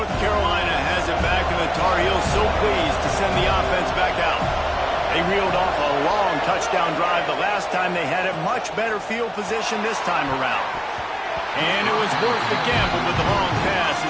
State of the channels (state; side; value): identical; both; correlation 1.00